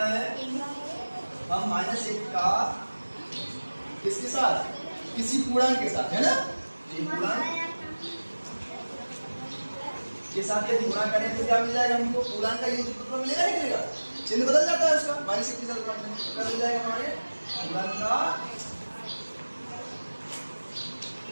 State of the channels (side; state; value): both; inverted; correlation -1.00